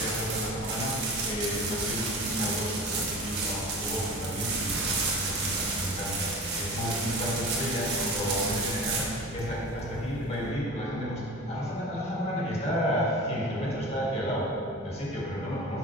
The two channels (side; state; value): both; normal; correlation 0.36